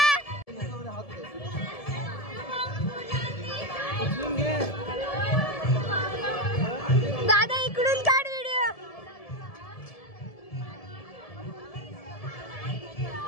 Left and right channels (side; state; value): right; late; 1.7 ms